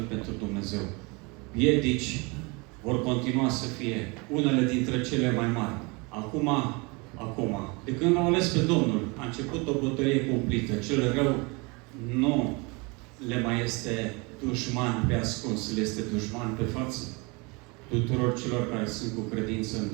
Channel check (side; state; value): left; quieter; 28.3 dB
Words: pentru Dumnezeu. Piedici vor continua să fie unele dintre cele mai mari. Acum, de când l-au ales pe Domnul, a început o bătălie cumplită. Cel rău nu le mai este dușman pe ascuns, le este dușman pe față tuturor celor care sunt cu credință în